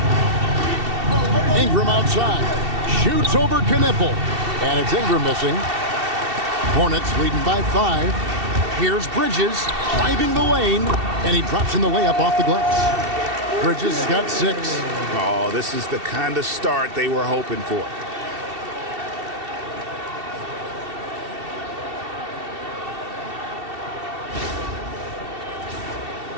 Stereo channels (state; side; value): late; left; 2.7 ms